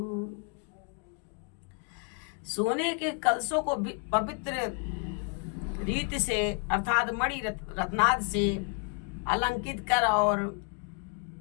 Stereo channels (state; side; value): quieter; right; 36.5 dB